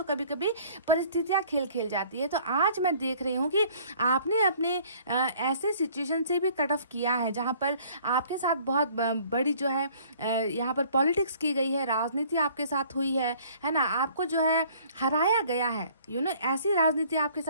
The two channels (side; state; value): both; inverted; correlation -0.55